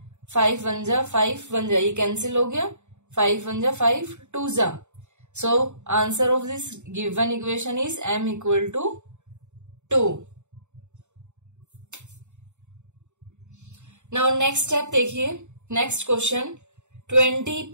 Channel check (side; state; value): left; late; 0.84 ms